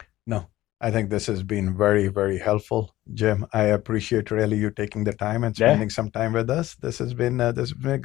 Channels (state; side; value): quieter; right; 15.7 dB